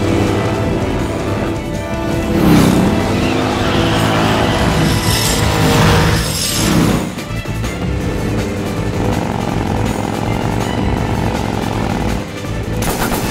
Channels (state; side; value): identical; both; correlation 1.00